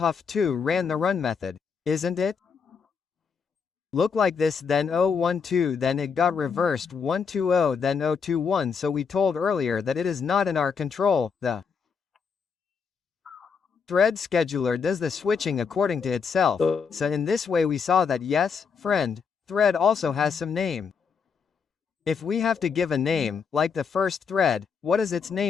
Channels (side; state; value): right; quieter; 6.0 dB